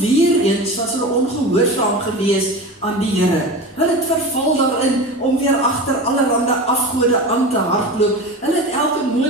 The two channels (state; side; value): normal; both; correlation 0.29